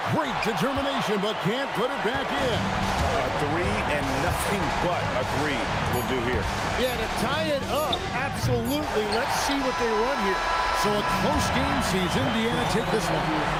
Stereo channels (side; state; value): both; identical; correlation 1.00